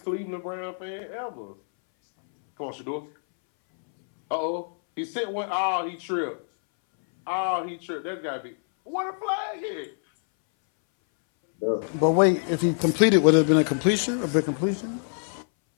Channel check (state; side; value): silent; right; 61 dB below the other